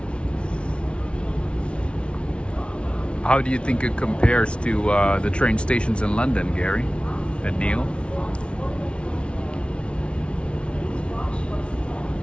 How do you think it compares to the train stations in London, Gary and Neil?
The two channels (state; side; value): late; right; 0.059 ms